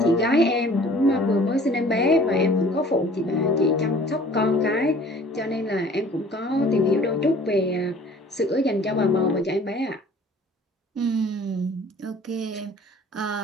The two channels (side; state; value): both; normal; correlation 0.50